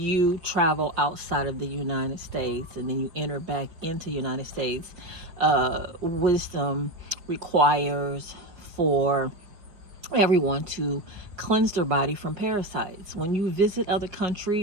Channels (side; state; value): left; late; 5.2 ms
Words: travel outside of the United States and then you enter back into the United States, wisdom requires for everyone to cleanse their body from parasites. When you visit other